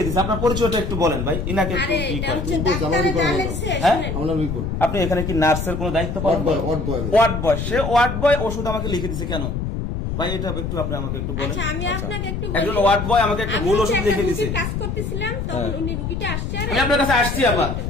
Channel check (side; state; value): left; noise; rumble, 3 dB below the sound